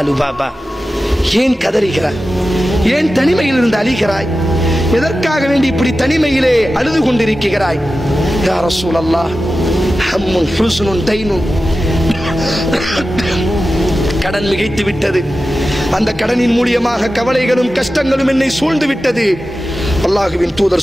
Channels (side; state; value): both; normal; correlation 0.93